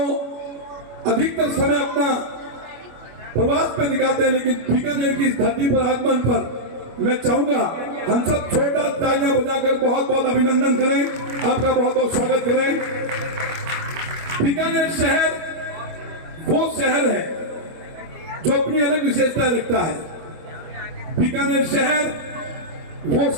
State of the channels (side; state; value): left; late; 25 ms